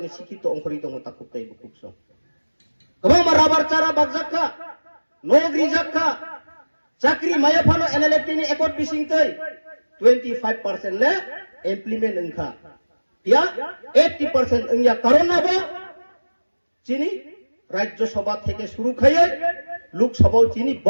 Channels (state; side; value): inverted; both; correlation -1.00